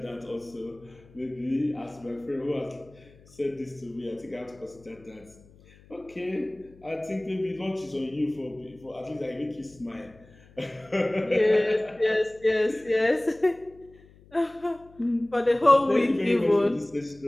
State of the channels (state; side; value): noise; left; hum, 25 dB below the sound